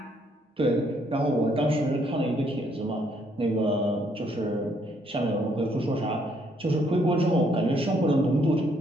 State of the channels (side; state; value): both; normal; correlation 0.69